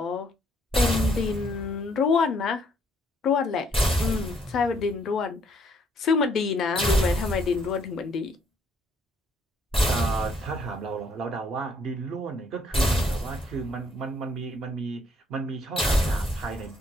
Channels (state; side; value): normal; both; correlation 0.67